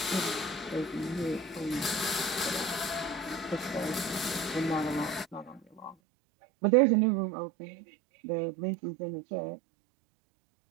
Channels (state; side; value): drops out; left; at 6.0 s